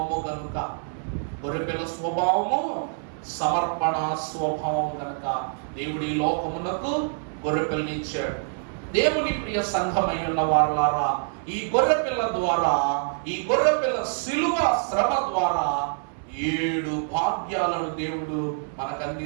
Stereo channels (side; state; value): left; silent; 61 dB below the other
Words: కనుక. గొర్రె పిల్ల స్వభావము సమర్పణ స్వభావం కనుక దేవుడి లోకమునకు గొర్రె పిల్లని ఇచ్చాడు. దేవుని ప్రియ సంఘమై ఉన్న వారలారా, ఈ గొర్రె పిల్ల ద్వారా, ఈ గొర్రె పిల్ల శిలువ శ్రమ ద్వారా 7 భాగ్యాలను దేవుడు మనకు